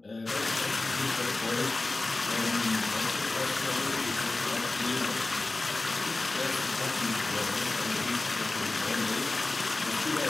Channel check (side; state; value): right; quieter; 3.2 dB